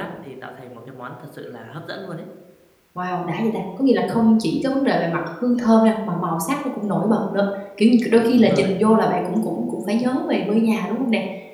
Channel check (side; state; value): both; identical; correlation 1.00